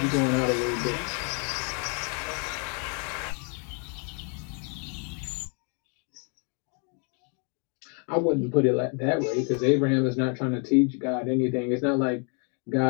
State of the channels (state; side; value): quieter; right; 38.4 dB